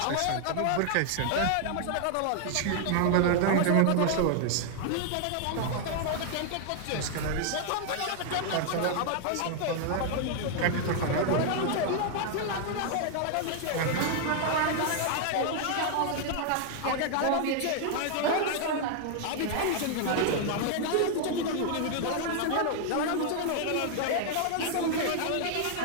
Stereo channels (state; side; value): different; both; correlation 0.00